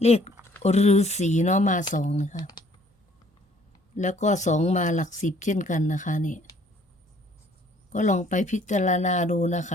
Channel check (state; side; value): normal; both; correlation 0.60